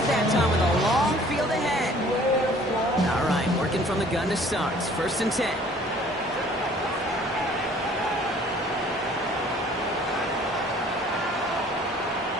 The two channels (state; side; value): normal; both; correlation 0.54